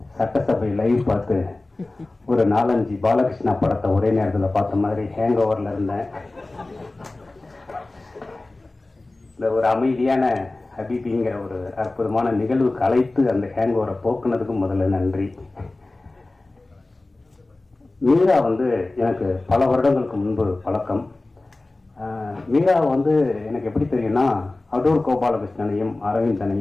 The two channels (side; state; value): right; quieter; 3.0 dB